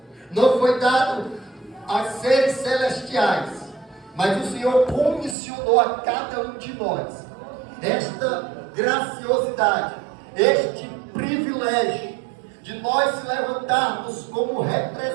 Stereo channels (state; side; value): drops out; left; at 5.4 s